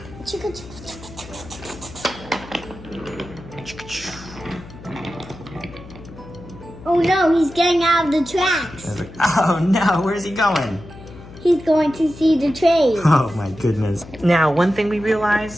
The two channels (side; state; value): left; noise; hum, 17 dB below the sound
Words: Oh no, he's getting out of the tracks. Oh no, where's he going? He's going to see the train. Oh my goodness. Now, one thing we